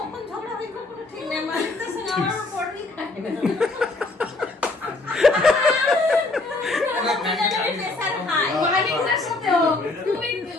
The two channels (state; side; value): quieter; right; 3.2 dB